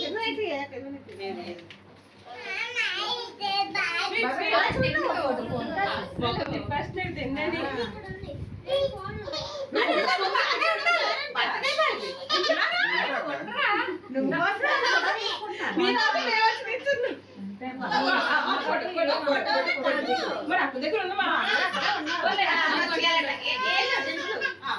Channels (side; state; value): both; identical; correlation 1.00